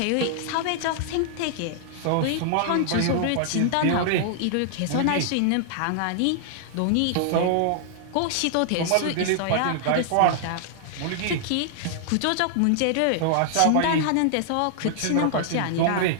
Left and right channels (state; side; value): different; both; correlation -0.01